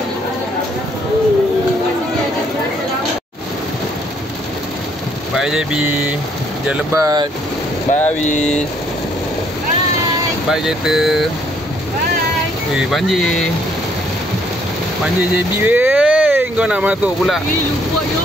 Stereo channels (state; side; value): normal; both; correlation 0.67